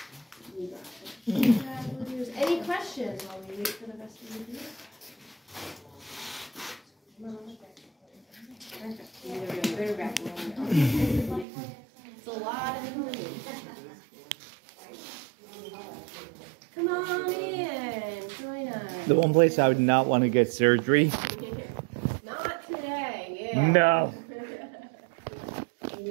Any questions while we wait for the rest of the video? It's a lot of information. Come on in, join us. The one place I would not want to get surgery. Not today, yeah. No.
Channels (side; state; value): left; drops out; at 11.5 s